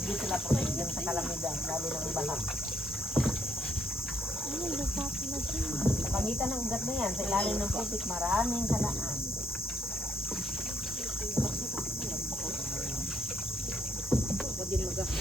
sila protection sa kalamidad, lalo ng baha. Sa pangitan ng ugat na yan, sa ilalim ng putik, maraming halaan.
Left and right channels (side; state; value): both; normal; correlation 0.72